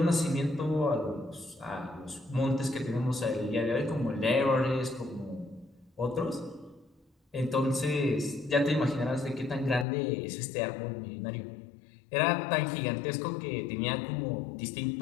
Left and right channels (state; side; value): drops out; right; at 9.9 s